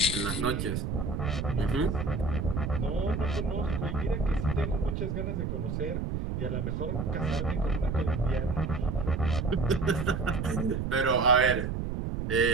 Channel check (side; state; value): right; noise; rumble, 2 dB below the sound